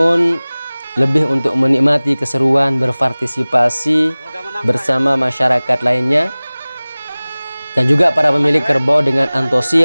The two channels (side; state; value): both; inverted; correlation -0.99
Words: lebih untuk menikmati keseruan berpartisipasi bersama masyarakat lainnya. Dan juga para pemilik kerbau dengan